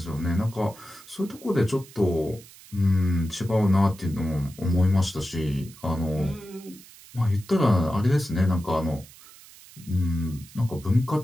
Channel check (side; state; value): right; noise; hiss, 21 dB below the sound